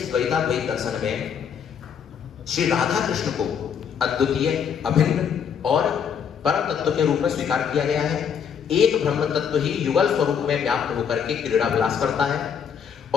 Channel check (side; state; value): right; quieter; 7.6 dB